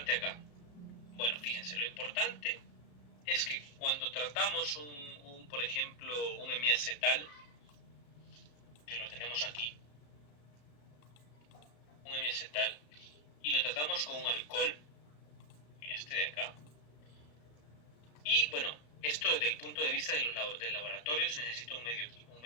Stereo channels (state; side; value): late; right; 34 ms